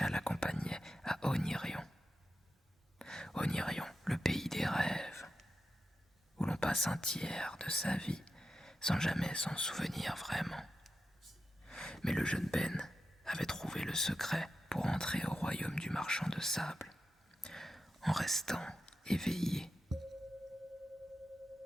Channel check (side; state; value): both; normal; correlation 0.89